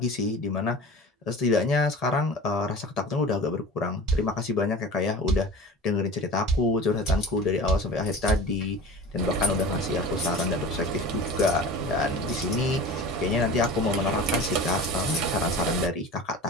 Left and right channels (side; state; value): both; normal; correlation 0.36